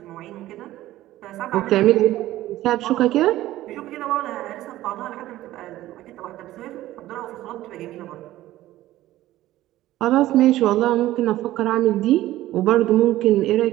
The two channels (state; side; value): quieter; left; 15.2 dB